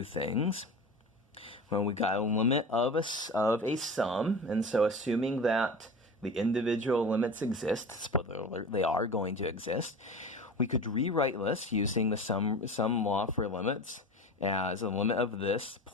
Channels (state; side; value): normal; both; correlation 0.32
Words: things. Well, we got a limit of a sum, and so assuming that the individual limits exist, spoiler alert, they are going to exist, we could rewrite this using the sum law for limits as a limit of this